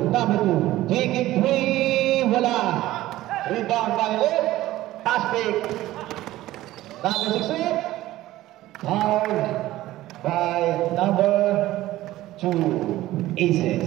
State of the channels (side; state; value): left; quieter; 15.9 dB